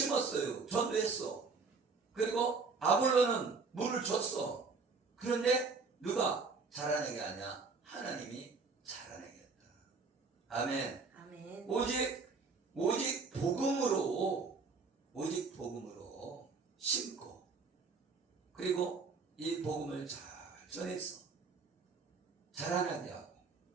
전도했어. 그리고 아볼로는 물을 줬어. 그런데 누가 자라나게 하냐? 하나님이 자라나게 했다. 아멘. 아멘. 오직 복음으로 심고 그리고 이 복음을 잘 전해서 자라나게 하고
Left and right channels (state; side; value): quieter; left; 4.5 dB